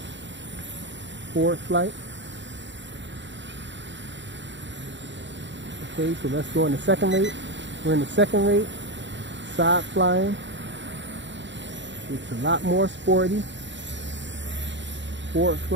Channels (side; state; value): left; late; 0.53 ms